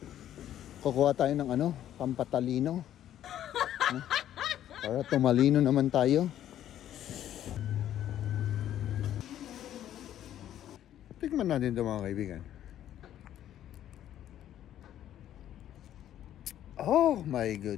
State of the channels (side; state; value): right; quieter; 11.5 dB